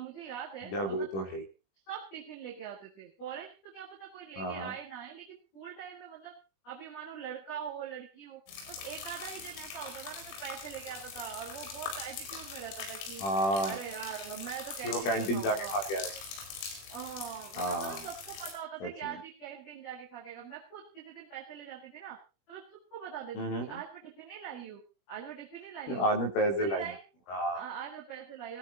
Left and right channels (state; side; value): late; right; 21 ms